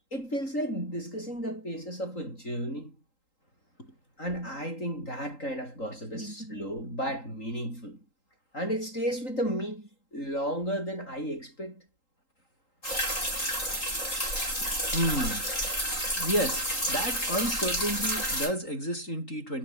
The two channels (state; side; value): late; right; 3.8 ms